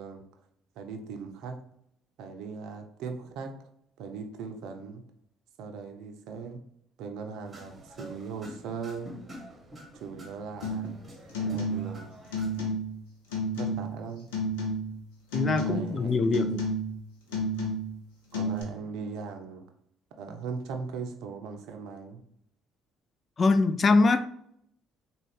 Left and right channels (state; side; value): normal; both; correlation 0.54